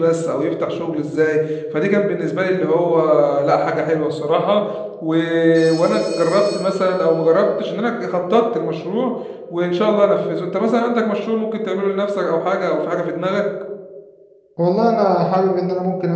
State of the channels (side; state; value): both; identical; correlation 1.00